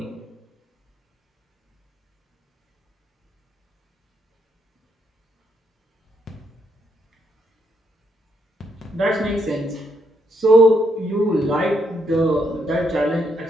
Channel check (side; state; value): both; normal; correlation 0.76